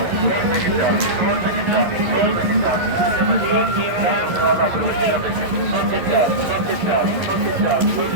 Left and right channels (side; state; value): left; late; 11 ms